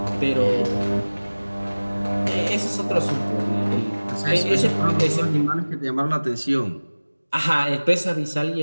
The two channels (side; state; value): both; inverted; correlation -1.00